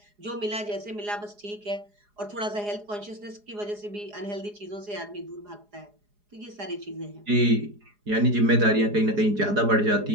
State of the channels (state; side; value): late; left; 4.8 ms